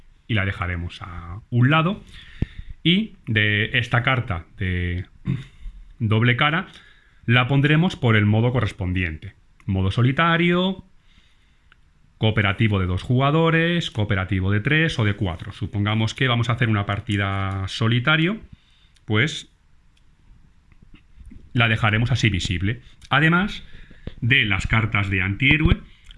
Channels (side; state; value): both; identical; correlation 1.00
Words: y la dejaremos a un lado. Y de esta carta de doble cara la pondremos por el modo correspondiente. Modo solitario, cooperativo de 2 jugadores, cooperativo de 3 o de 4. Supongamos que vamos a hacer una partida solitario, pues la dejaremos así visible. Además de las cartas de antihéroe,